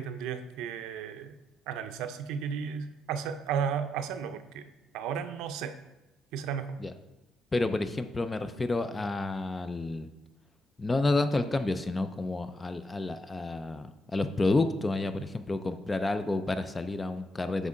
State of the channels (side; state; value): both; normal; correlation 0.81